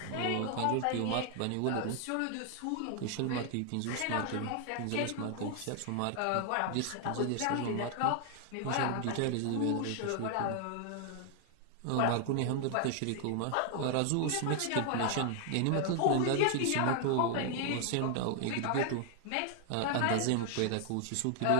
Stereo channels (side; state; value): both; different; correlation 0.00